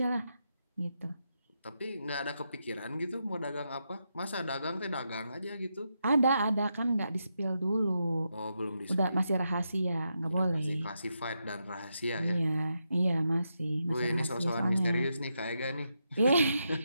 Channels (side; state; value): both; inverted; correlation -0.84